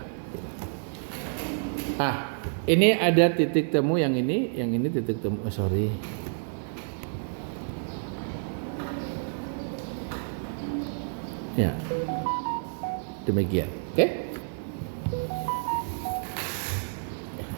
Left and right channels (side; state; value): left; silent; digital silence